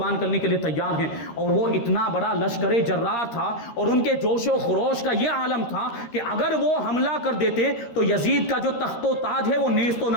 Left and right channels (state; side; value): late; right; 13 ms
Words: کرنے کے لیے تیار ہیں۔ اور وہ اتنا بڑا لشکر جرار تھا اور ان کے جوش و خروش کا یہ عالم تھا کہ اگر وہ حملہ کر دیتے تو یزید کا جو تخت و تاج ہے وہ نیست و